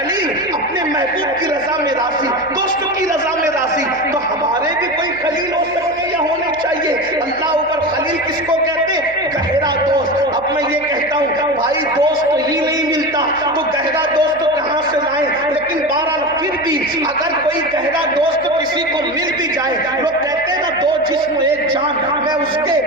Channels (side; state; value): right; noise; hum, 24 dB below the sound